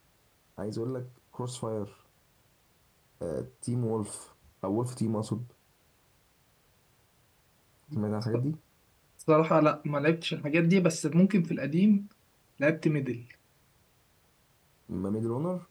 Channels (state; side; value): identical; both; correlation 1.00